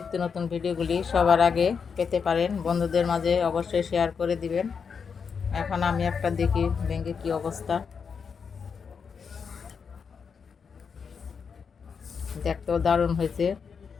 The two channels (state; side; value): quieter; right; 6.1 dB